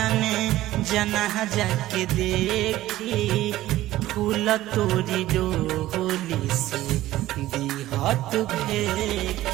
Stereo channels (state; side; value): quieter; left; 15.4 dB